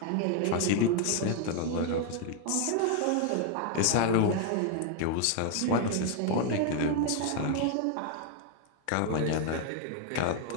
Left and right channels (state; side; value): different; both; correlation 0.01